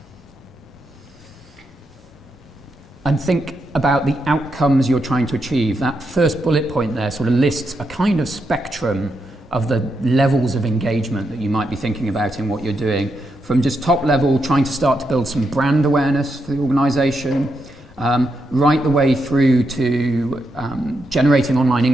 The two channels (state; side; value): normal; both; correlation 0.83